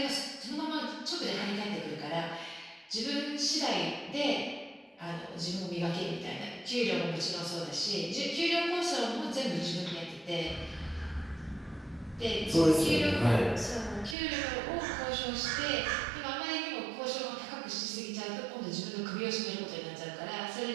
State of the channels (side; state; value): left; drops out; at 14.2 s